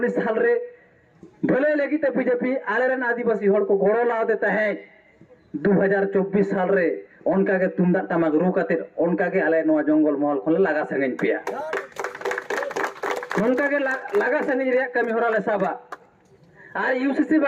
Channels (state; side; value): identical; both; correlation 1.00